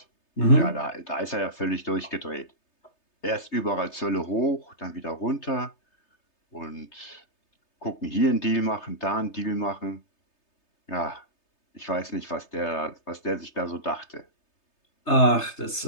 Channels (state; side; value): late; right; 3.3 ms